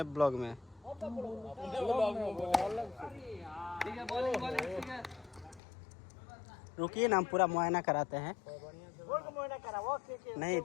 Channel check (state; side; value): drops out; right; at 5.6 s